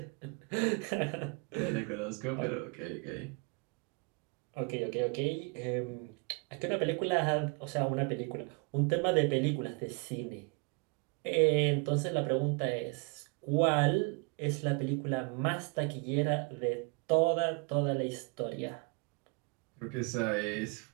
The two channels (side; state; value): left; quieter; 31.5 dB